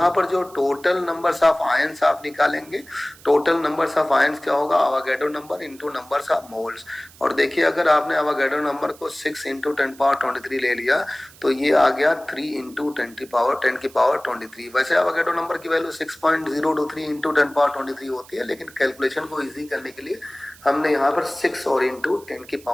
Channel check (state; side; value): noise; right; hiss, 23 dB below the sound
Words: पर जो टोटल नंबर्स ऑफ आयंस आप निकालेंगे, टोटल नंबर्स ऑफ आयंस क्या होगा, Avogadro number into numbers of moles. और देखिए अगर आपने अवागैड्रो नंबर को 6 इंटू 10⁻23 ले लिया तो ये आ गया 3 इंटू 10⁻23। वैसे अवागैड्रो नंबर की वैल्यू 6.023 इंटू 10⁻23 होती है, लेकिन कैलकुलेशन को ईजी करने के लिए हमने यहाँ पर 6 और इंटू